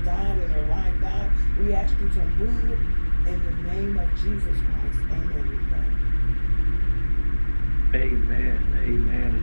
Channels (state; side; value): inverted; both; correlation -1.00